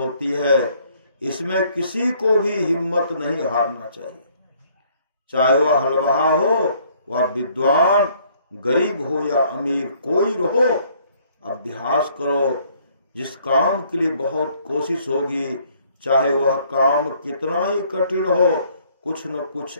है। इसमें किसी को भी हिम्मत नहीं हारना चाहिए। चाहे वह हलवाहा हो, वह विद्वान, गरीब हो या अमीर, कोई रहो, अभ्यास करो। जिस काम के लिए बहुत कोशिश होगी, चाहे वह काम कितना ही कठिन हो, कुछ न कुछ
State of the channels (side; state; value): both; inverted; correlation -0.63